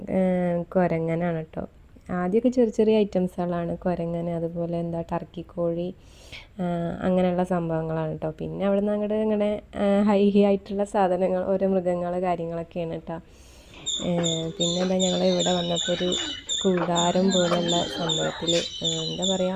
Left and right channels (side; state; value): both; identical; correlation 1.00